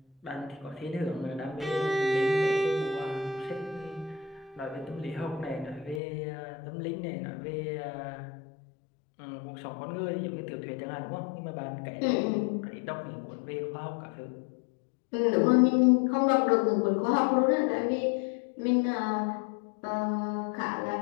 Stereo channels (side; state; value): right; drops out; at 6.0 s